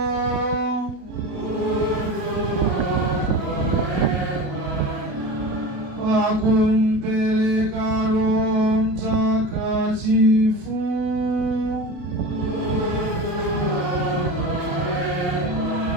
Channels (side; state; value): left; late; 28 ms